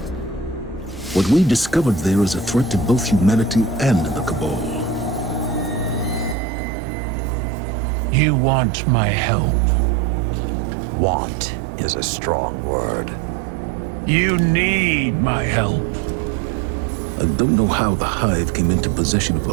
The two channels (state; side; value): drops out; left; at 6.4 s